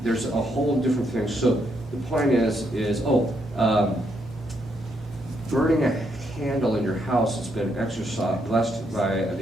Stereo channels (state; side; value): normal; both; correlation 0.76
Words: There's a whole different thing. So the point is burning a candle in your house that's been blessed by